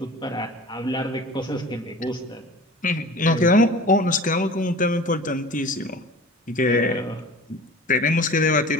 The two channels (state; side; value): normal; both; correlation 0.39